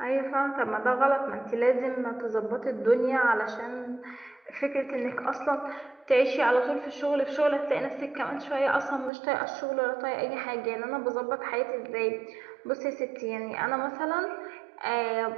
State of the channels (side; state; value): left; drops out; at 9.1 s